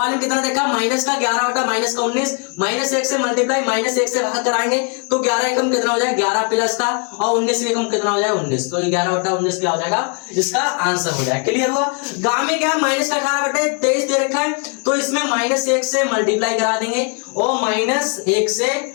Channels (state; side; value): quieter; right; 38.1 dB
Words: में कितना देखा, माइनस का 11 बटा माइनस का 19, माइनस 1 से मल्टीप्लाई, माइनस 1 से भाग कराएंगे तो 11 एकम कितना हो जाएगा, 11 प्लस का, और 19 एकम कितना हो जाएगा, 19, तो 11 बटा 19 क्या हो जाएगा, इसका आंसर हो जाएगा। क्लियर हुआ। गांव में क्या, माइनस का 18 बटे 23 दे रखा है तो इसमें माइनस 1 से मल्टीप्लाई करा देंगे और माइनस 1 से